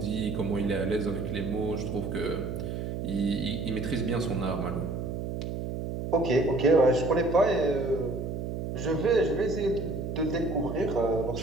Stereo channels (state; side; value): noise; right; hum, 4 dB below the sound